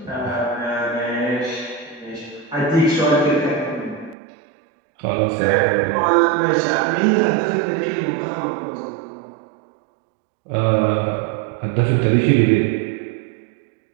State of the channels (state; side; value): drops out; left; at 4.2 s